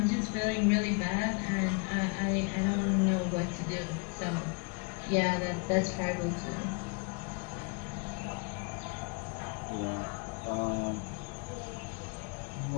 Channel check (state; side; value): quieter; right; 33.9 dB